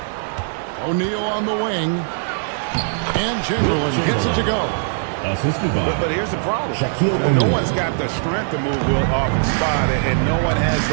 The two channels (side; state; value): left; silent; digital silence